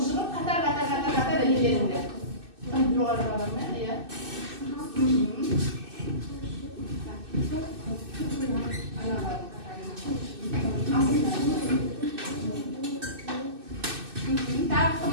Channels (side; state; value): left; late; 2.6 ms